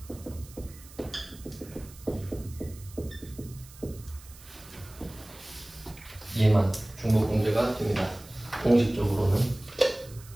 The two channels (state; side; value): noise; right; hiss, 20 dB below the sound